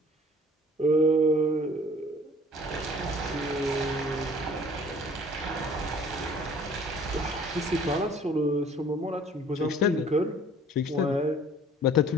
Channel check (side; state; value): both; normal; correlation 0.52